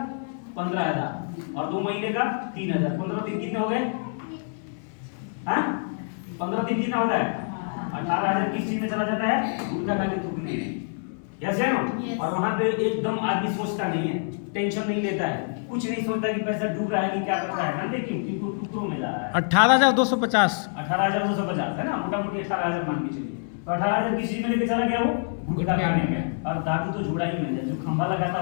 15,000। और 2 महीने का 3,000। 15 दिन कितने हो गए? हाँ, 15 दिन कितना होता है? 18,000 किस चीज में चला जाता है? गुटखा खा के थूकने में। यस है ना। और वहां पे एकदम आदमी सोचता नहीं है, टेंशन नहीं लेता है, कुछ नहीं सोचता कि पैसा डूब रहा है कि क्या कर रहा है, जानते क्यों? क्योंकि टुकड़ों में जा रहा है। 18,250 18,250 है ना, मोटा मोटी 18,000 मान के चलिए। तो 18,000 किस चीज में लेके चला गया वो? गुटखा खाने में। और दारू तो जोड़ा ही मैंने, जो खंभा लगाता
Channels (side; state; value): right; silent; 61 dB below the other